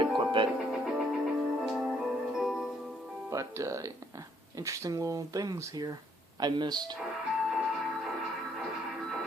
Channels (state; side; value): normal; both; correlation 0.68